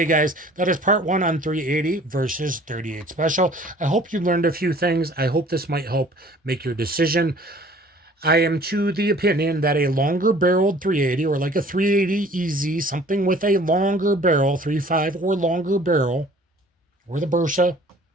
guys, that is part 1 on 380 versus 38 special. I hope you learned a few things. I hope this might help make your decision. I am to the opinion that a longer barreled 380, or like a 380 EZ, something with a longer barrel, 3.5 or longer barrel, or the Bersa,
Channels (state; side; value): normal; both; correlation 0.51